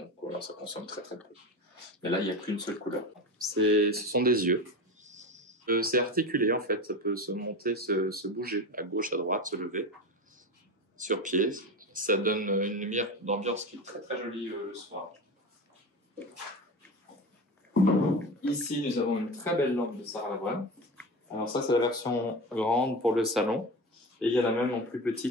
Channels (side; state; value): both; normal; correlation 0.26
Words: voilà, ça consomme très très peu. Mais là, il n'y a qu'une seule couleur. Ce sont des yeux. C'est articulé en fait, ça peut se monter, se bouger à gauche, à droite, se lever sur pied. Ça donne une lumière d'ambiance qui est très très jolie le soir. Ici, nous avons une très belle lampe de Sarah Lavoine. Alors ça, c'est la version grande pour le salon. Et il y en a même en plus